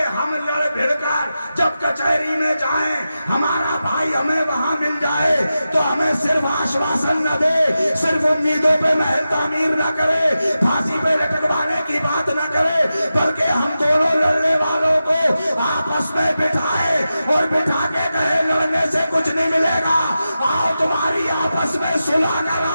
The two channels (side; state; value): both; inverted; correlation -0.92